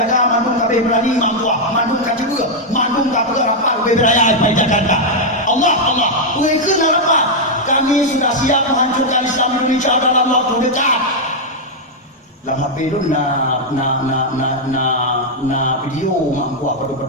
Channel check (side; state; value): both; normal; correlation -0.02